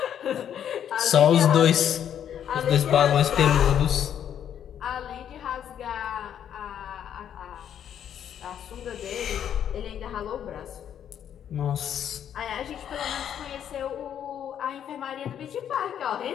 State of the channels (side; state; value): right; quieter; 9.4 dB